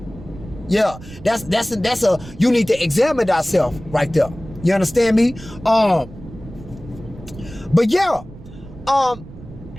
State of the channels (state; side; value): noise; right; rumble, 16 dB below the sound